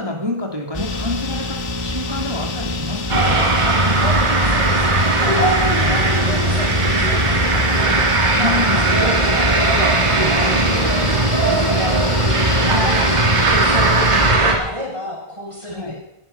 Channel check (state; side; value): late; left; 1.5 ms